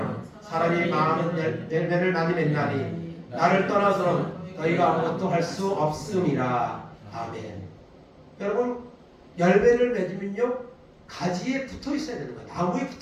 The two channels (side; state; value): both; identical; correlation 1.00